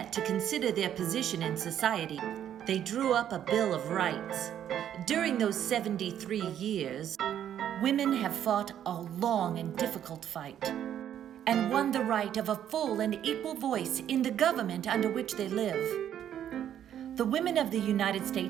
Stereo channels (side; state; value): left; quieter; 10.2 dB